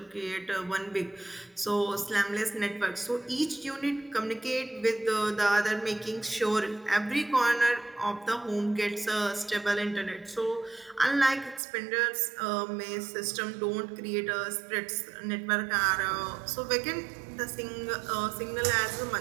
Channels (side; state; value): left; drops out; at 11.6 s